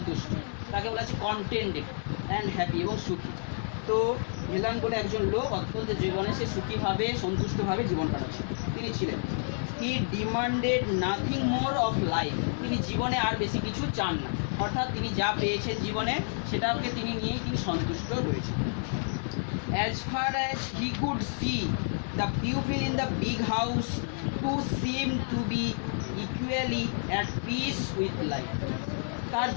তাকে বলা হচ্ছে কন্টেন্টেড অ্যান্ড হ্যাপি এবং সুখী। তো ভেলান বলে একজন লোক অত্যন্ত জীবনে সে সুখীভাবে সন্তুষ্টভাবে জীবন কাটাচ্ছিল তিনি ছিলেন। He demanded nothing more of life, তিনি জীবনে আর বেশি কিছু চান না, অর্থাৎ তিনি যা পেয়েছেন জীবনে সেটাকে তিনি নিয়েই তিনি সন্তুষ্ট রয়েছেন। As far as he could see the people in the big house to seem to be equally at peace with life. তার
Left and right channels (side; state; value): right; silent; digital silence